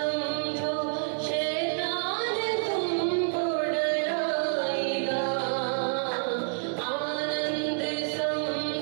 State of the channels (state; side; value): silent; left; 59 dB below the other